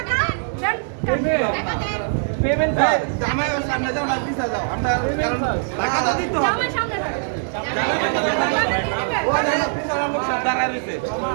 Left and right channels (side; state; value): left; silent; digital silence